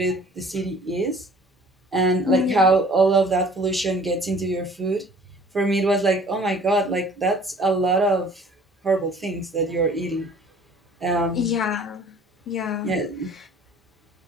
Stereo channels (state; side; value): normal; both; correlation 0.51